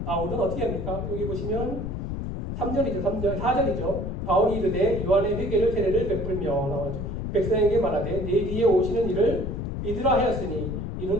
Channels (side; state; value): left; noise; rumble, 4 dB below the sound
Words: 바울은 어떻게 합니까? 여기 보시면 4절이죠. 바울이 이르되 요한의 회개를 세례를 베풀며 나와죠. 백성에게 말하되 내 뒤에 오시는 이를 믿으라 하였으니